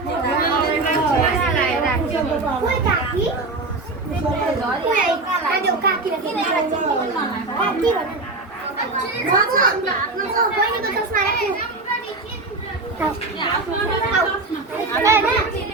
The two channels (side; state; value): left; quieter; 3.3 dB